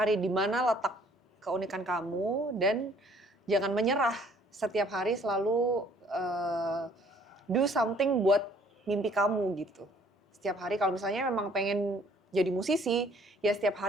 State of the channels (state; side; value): normal; both; correlation 0.59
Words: di mana letak keunikan kamu dan jangan menyerah. Setiap hari selalu do something buat mimpi kamu gitu. Setiap hari kalau misalnya memang pengen jadi musisi, ya setiap